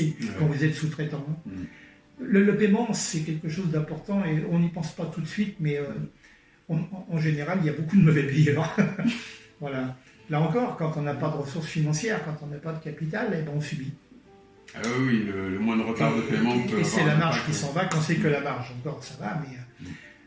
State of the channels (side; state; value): both; identical; correlation 1.00